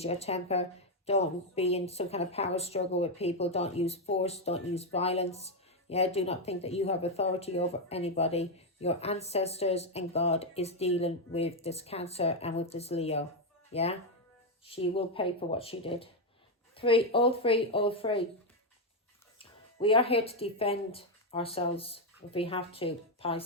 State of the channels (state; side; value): normal; both; correlation 0.03